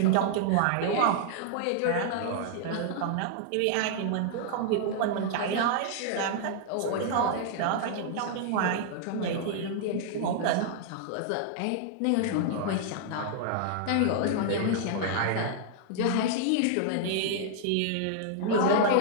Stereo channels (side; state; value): both; different; correlation -0.01